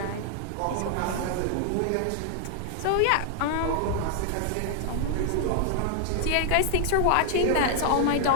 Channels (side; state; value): both; different; correlation 0.00